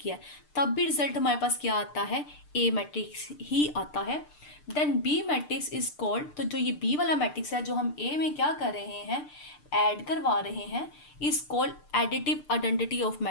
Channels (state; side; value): late; right; 6.7 ms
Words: है, तब भी रिजल्ट हमारे पास क्या आता है, ए मैट्रिक्स ही आता है। Then B matrix is called, तो जो ये बी वाला मैट्रिक्स है जो हम ए में क्या कर रहे हैं, ऐड करवा रहे हैं, is called additive identity of